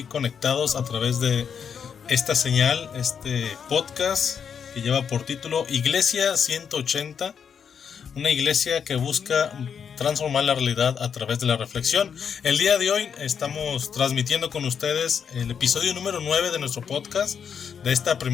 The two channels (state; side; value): quieter; right; 7.2 dB